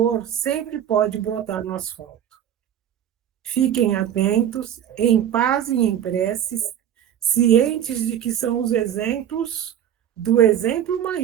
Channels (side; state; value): left; quieter; 10.2 dB